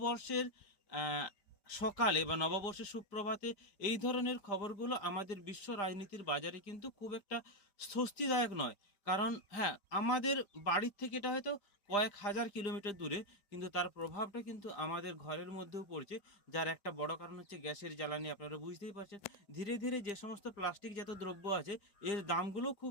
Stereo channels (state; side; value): late; right; 5.0 ms